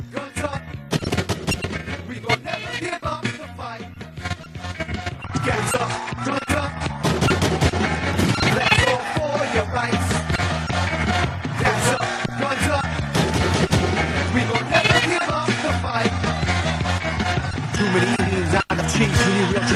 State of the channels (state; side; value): identical; both; correlation 1.00